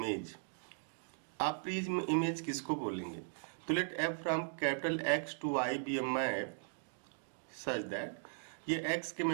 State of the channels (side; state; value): left; silent; digital silence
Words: आप प्री इमेज किसको बोलेंगे? तो let F from capital X to Y be a map such that ये एक्स के